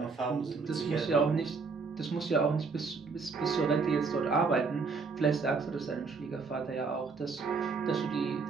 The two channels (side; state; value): left; quieter; 4.7 dB